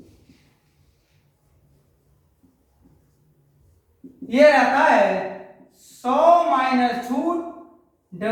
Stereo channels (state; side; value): identical; both; correlation 1.00